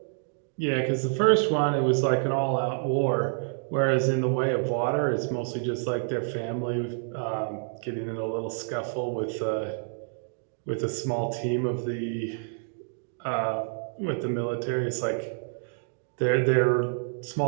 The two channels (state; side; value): silent; left; digital silence